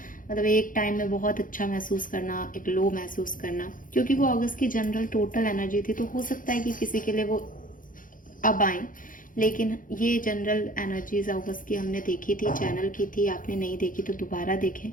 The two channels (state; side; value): late; right; 0.39 ms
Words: मतलब एक टाइम में बहुत अच्छा महसूस करना, एक लो महसूस करना, क्योंकि वो अगस्त की जनरल टोटल एनर्जी थी। तो हो सकता है कि किसी के लिए वो अब आए, लेकिन ये जनरल एनर्जीज अगस्त की हमने देखी थी, चैनल की थी। आपने नहीं देखी तो दोबारा देखें।